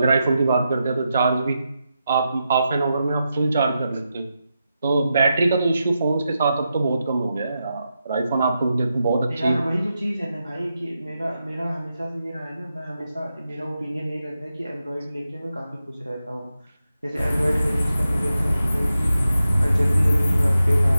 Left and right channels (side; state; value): both; inverted; correlation -0.88